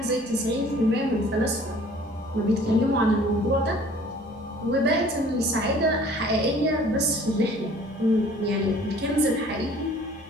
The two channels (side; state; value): left; noise; hum, 28 dB below the sound